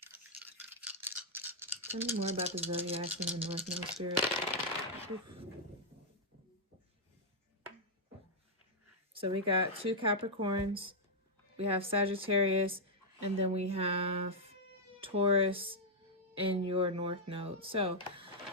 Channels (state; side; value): normal; both; correlation -0.05